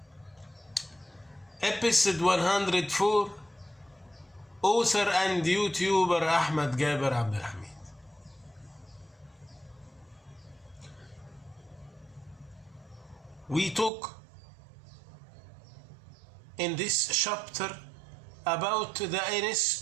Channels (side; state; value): left; drops out; at 13.9 s